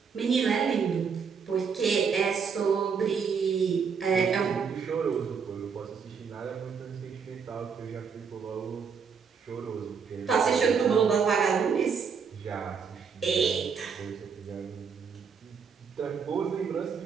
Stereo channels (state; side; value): quieter; left; 6.2 dB